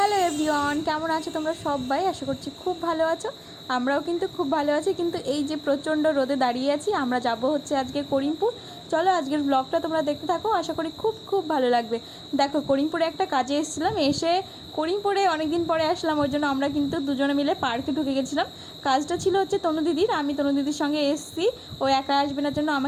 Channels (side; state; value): both; identical; correlation 1.00